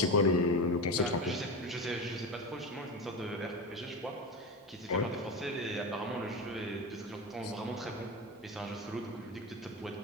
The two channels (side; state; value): both; normal; correlation 0.22